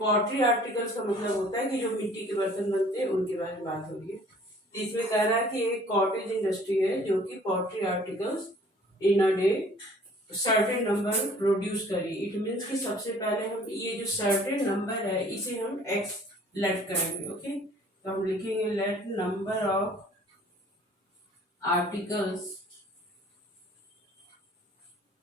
पॉटरी आर्टिकल्स का मतलब होता है कि जो मिट्टी के बर्तन बनते हैं उनके बारे में बात हो रही है। तो इसमें कह रहा है कि एक कॉटेज इंडस्ट्री है जो कि pottery articles in a day certain number produce करी। इट मीन्स कि सबसे पहले हम ये जो सर्टेन नंबर है इसे हम एक्स लेट करेंगे। ओके, तो हम लिखेंगे let number of articles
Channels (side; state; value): both; normal; correlation 0.54